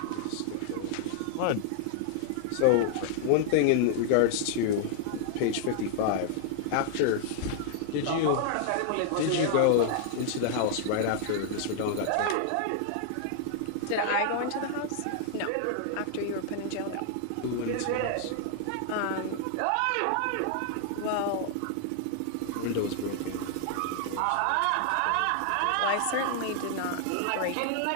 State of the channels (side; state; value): both; different; correlation -0.01